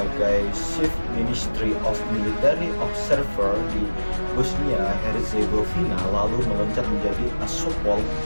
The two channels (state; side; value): inverted; both; correlation -1.00